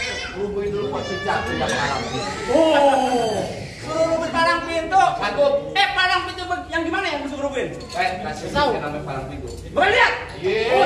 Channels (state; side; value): identical; both; correlation 1.00